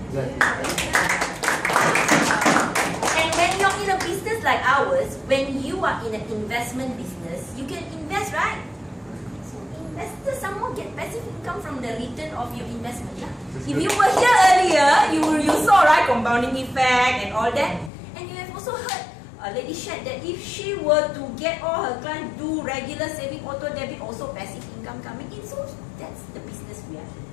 And when you're in a business like ours, when you are in an investment business, you can invest, right? Investors somehow get passive income from the return of your investment. Yeah? If you were here earlier, you saw, right, compounding effect and all that. And you have also heard a lady shared that if she were to get all her clients do regular saving, auto debit, also passive income coming in. So that's the business we are in.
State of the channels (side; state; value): right; drops out; at 17.9 s